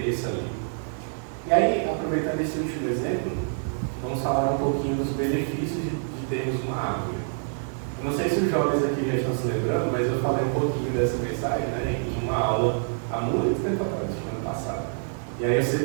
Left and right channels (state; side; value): silent; left; digital silence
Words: ali. E aí, aproveitando esse último exemplo, vamos falar um pouquinho dos benefícios de termos uma árvore. Eu não sei se os jovens aqui já estão se lembrando, mas eu falei um pouquinho dessa mensagem, né, em uma aula há muito tempo atrás, ano passado. E aí eu